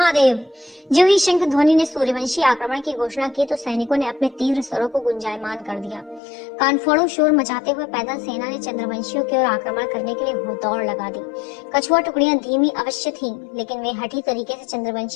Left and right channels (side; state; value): right; drops out; at 6.2 s